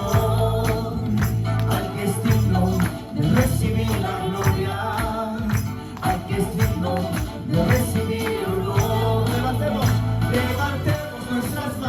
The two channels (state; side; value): identical; both; correlation 1.00